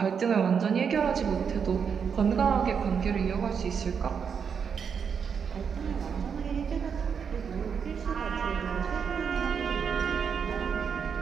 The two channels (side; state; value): left; quieter; 6.7 dB